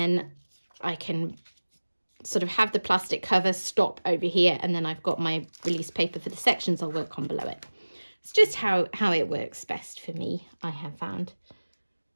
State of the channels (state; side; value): inverted; both; correlation -1.00